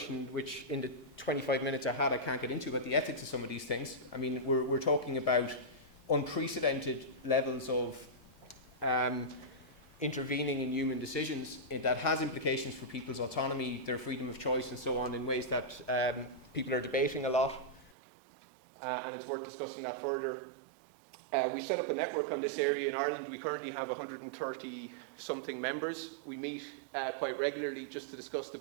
which in the 25 minutes I had I can't get into, about the ethics of some of these things. I mean, we're talking about unprecedented levels of intervening in human decisions that has implications for people's autonomy, their freedom of choice and so on, in ways that people are debating a lot, and it's worth discussing that further. We set up a network on this area in Ireland. We currently have 130 something members. We meet quite regularly just to discuss the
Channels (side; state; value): left; drops out; at 17.9 s